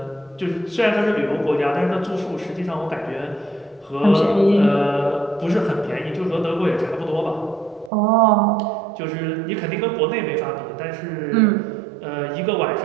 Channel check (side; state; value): left; drops out; at 7.9 s